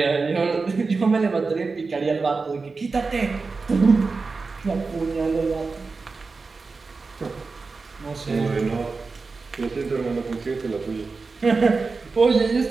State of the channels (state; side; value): quieter; left; 4.3 dB